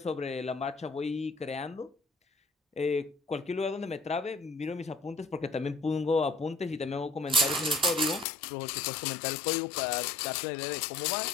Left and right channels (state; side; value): drops out; right; at 8.2 s